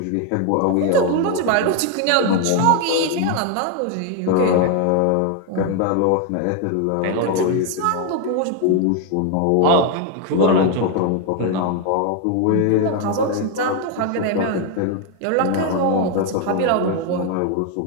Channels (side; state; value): both; different; correlation 0.01